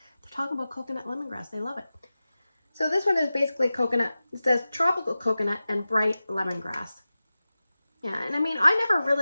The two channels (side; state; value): both; inverted; correlation -0.95